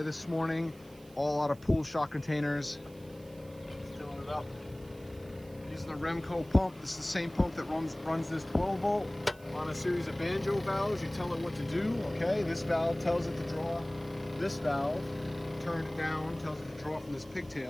this morning. All out of pool shock containers. Filling it up. Using the Remco pump. This is the same pump that runs this 12 volt on a series of banjo valves. You tell it what to do, okay? This valve tells it to draw. This valve, turn it down, tells it to draw from this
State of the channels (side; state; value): right; noise; hiss, 25 dB below the sound